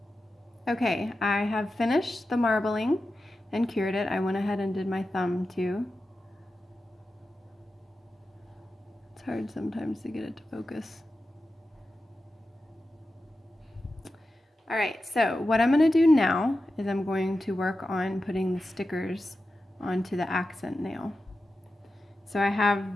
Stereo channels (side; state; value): both; normal; correlation 0.92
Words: Okay, I have finished the marbling and cured it. I went ahead and did my thumb too. It's hard sometimes to get it to focus. All right, so what I'm going to do now is I'm going to work on putting the stickers onto the accent nail. So I have